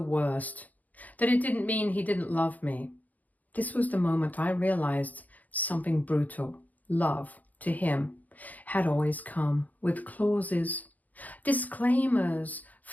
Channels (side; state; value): right; late; 0.079 ms